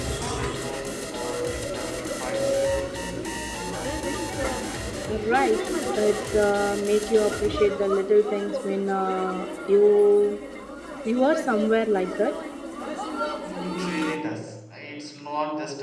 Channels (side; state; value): both; identical; correlation 1.00